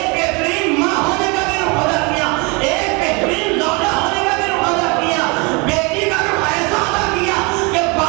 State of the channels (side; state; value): left; quieter; 29.1 dB